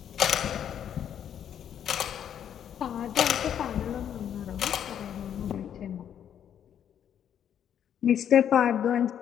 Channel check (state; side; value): quieter; right; 9.3 dB